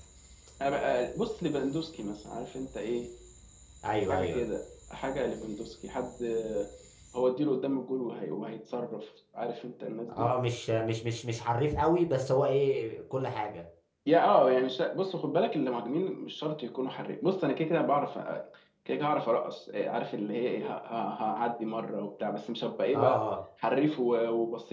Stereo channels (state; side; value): identical; both; correlation 1.00